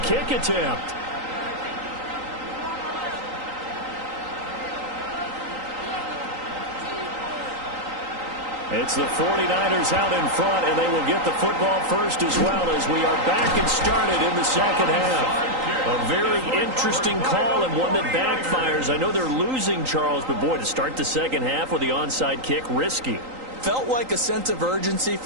kick attempt. It's the 49ers out in front, and they will get the football first as well as we are back and started in the 2nd half. A very interesting call and one that backfires. I know they're losing, Charles, but boy, to start the 2nd half with the onside kick, risky. Felt like a sense of urgency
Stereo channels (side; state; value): left; late; 3.8 ms